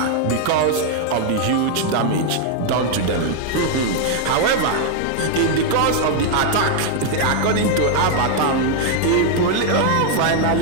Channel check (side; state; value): both; different; correlation 0.00